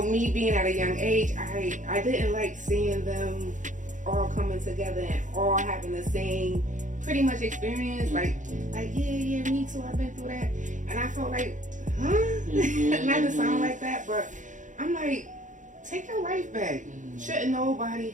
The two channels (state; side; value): late; left; 0.37 ms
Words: being at a young age, I didn't like seeing them all coming together and all having the same pretty much experience. Like yeah, me too, I've been through that. And I felt like, not to sound like that, but I'm like, take your life back. Shouldn't nobody